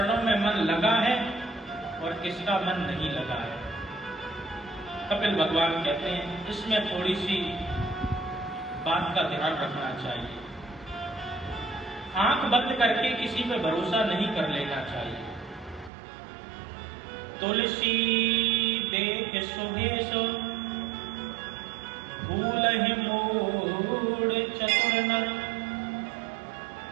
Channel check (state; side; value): drops out; left; at 15.9 s